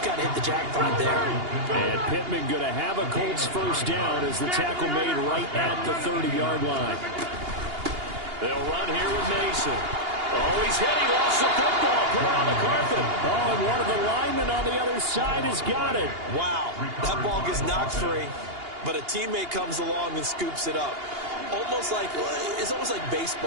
got to hit the jackpot there. And Pittman going to have a Colts first down as the tackle made right at the 30-yard line. They'll run here with Mason. Oh, he's hit. He lost the football. Put it on the carpet. Oh, and one of the linemen on the other side has got it. Wow. That ball gets knocked free, but a teammate comes along and scoops it up. It's almost like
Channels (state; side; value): late; left; 2.8 ms